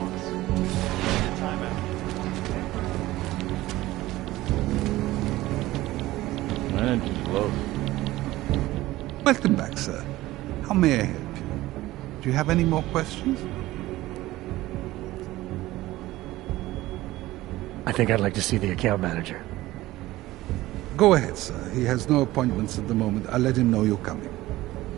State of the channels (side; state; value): left; quieter; 17.2 dB